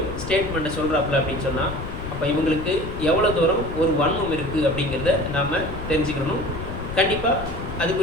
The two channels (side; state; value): left; noise; rumble, 8 dB below the sound